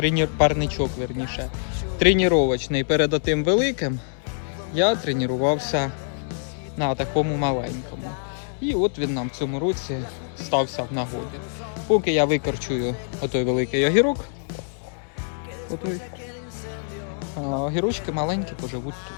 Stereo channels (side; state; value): right; silent; digital silence